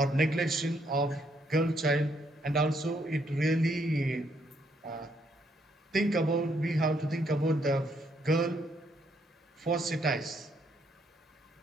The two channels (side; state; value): both; normal; correlation 0.72